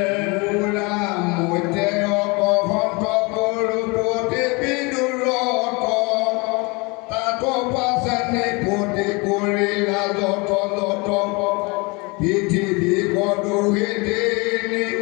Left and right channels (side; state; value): right; quieter; 27.8 dB